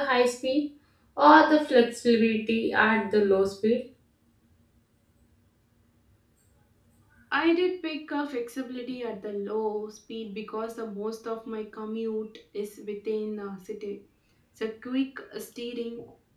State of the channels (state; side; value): identical; both; correlation 1.00